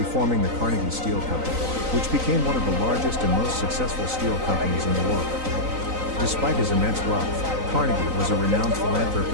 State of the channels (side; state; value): left; late; 3.9 ms